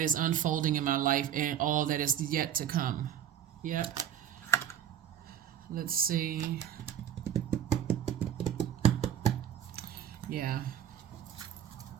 is unfolding in my life and all that is yet to come. Yep. Let's see. Yeah.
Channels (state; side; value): quieter; left; 10.0 dB